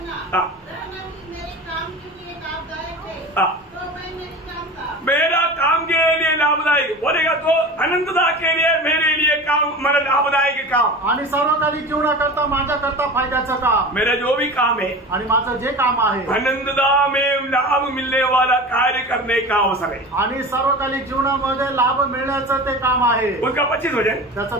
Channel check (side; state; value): both; normal; correlation 0.33